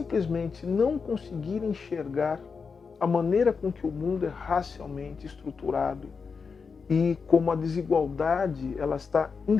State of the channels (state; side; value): quieter; right; 5.3 dB